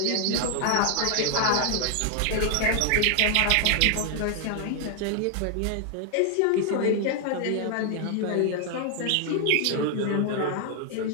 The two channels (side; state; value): both; different; correlation 0.00